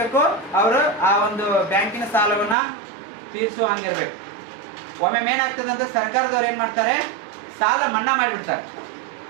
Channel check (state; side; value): drops out; left; at 2.6 s